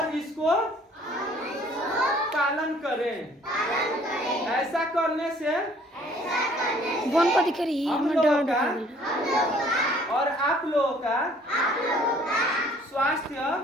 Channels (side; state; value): both; normal; correlation 0.57